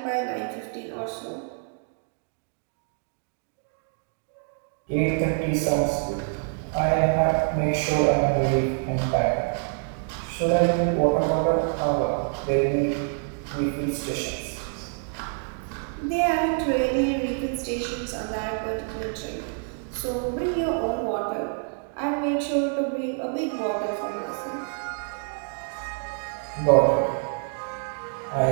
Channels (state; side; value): silent; left; 56 dB below the other